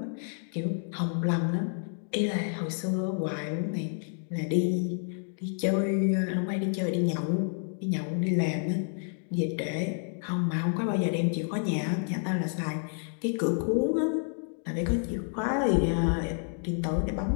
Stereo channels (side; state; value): right; silent; 58 dB below the other